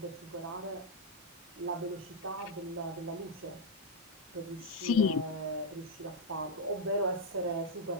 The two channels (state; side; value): normal; both; correlation 0.00